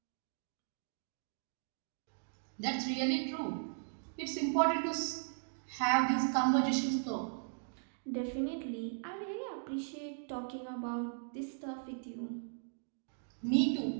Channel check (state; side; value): silent; left; digital silence